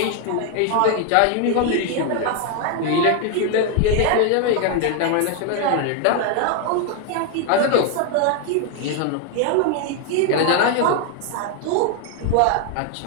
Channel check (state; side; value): different; both; correlation 0.01